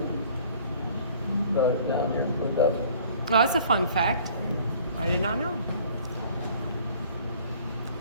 Brought it down there and put it up. well, that's a fun fact. I did not know.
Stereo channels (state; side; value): inverted; both; correlation -0.53